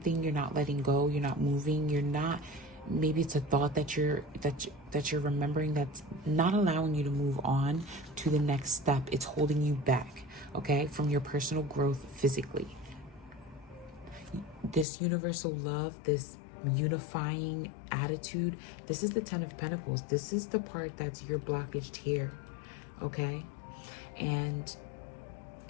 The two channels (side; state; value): right; drops out; at 14.9 s